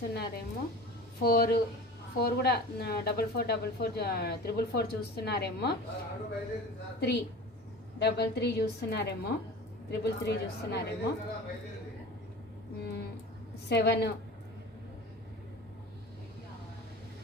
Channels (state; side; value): normal; both; correlation 0.36